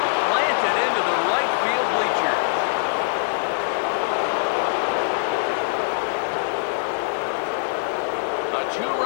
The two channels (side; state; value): right; silent; digital silence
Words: Planted into the right field bleacher. A